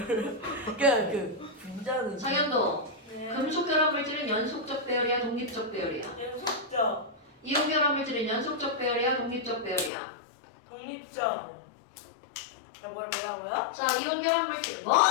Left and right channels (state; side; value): drops out; right; at 9.9 s